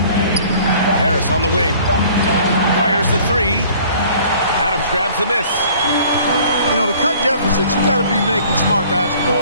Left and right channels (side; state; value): both; inverted; correlation -0.53